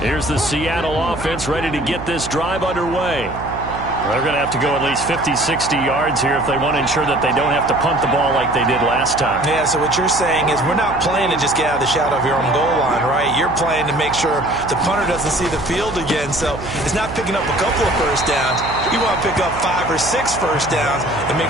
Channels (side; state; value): right; noise; hum, 11 dB below the sound